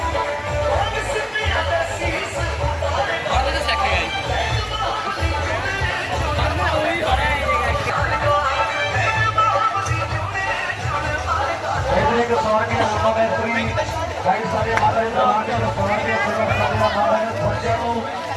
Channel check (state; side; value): identical; both; correlation 1.00